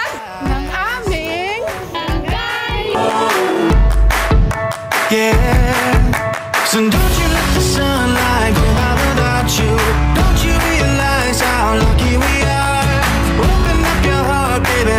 ng aming barangay? Yeah, so don't you let the sunlight go out without you. Don't you realize how lucky we are? Open up your heart, baby,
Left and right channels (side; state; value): both; identical; correlation 1.00